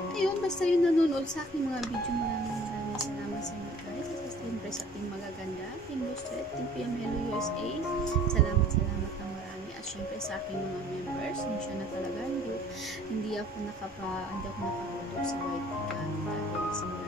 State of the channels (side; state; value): both; normal; correlation 0.53